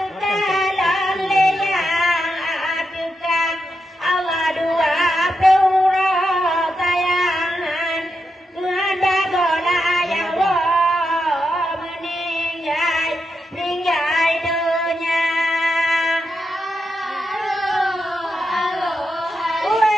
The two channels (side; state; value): both; normal; correlation 0.85